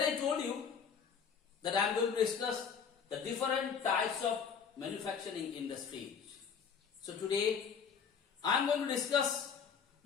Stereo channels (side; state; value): right; quieter; 6.6 dB